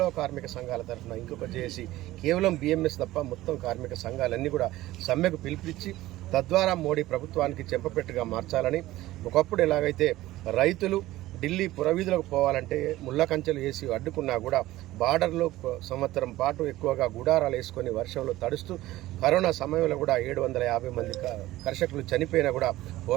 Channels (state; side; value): quieter; left; 16.5 dB